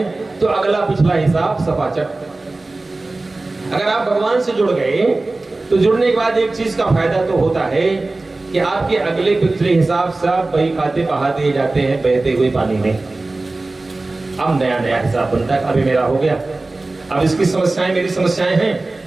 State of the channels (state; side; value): quieter; left; 3.2 dB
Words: तो अगला पिछला हिसाब सपाचट। अगर आप भगवान से जुड़ गए तो जुड़ने के बाद एक चीज का फायदा तो होता है कि आपके अगले पिछले हिसाब सब बही खाते बहा दिए जाते हैं बहते हुए पानी में। अब नया नया हिसाब बनता है, अभी मेरा हो गया, अब इसकी समस्याएं मेरी समस्याएं हैं।